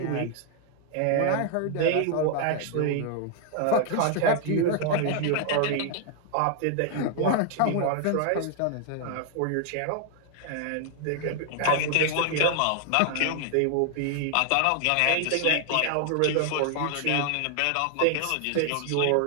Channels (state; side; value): different; both; correlation 0.00